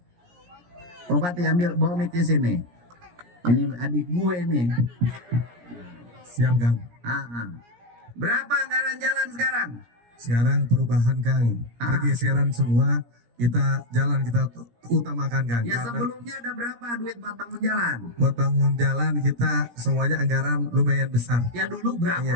Bupati ambil bawa mic di sini. Ini adik gue nih. Siap, Kang. Berapa anggaran jalan sekarang? Sekarang perubahan, Kang. Pergeseran semua, kita jalan kita utamakan, Kang. Ya, sebelumnya ada berapa duit buat bangun jalan? Buat bangun jalan kita semuanya anggaran lumayan besar. Ya dulu berapa?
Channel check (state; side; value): late; left; 17 ms